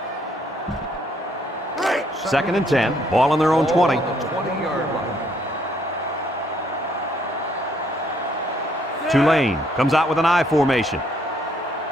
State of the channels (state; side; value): normal; both; correlation 0.68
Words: Second and 10. Ball on their own 20. On the 20-yard line. Tulane comes out with an I formation.